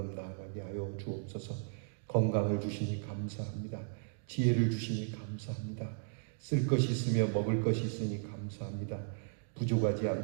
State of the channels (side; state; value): left; silent; digital silence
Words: 나아가게 하여 주옵소서. 건강을 주시니 감사합니다. 지혜를 주시니 감사합니다. 쓸 것이 있으며 먹을 것이 있으니 감사합니다. 부족하지